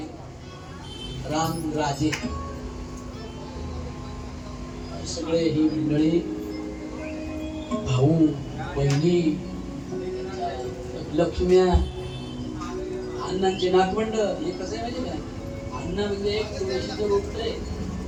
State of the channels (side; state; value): both; identical; correlation 1.00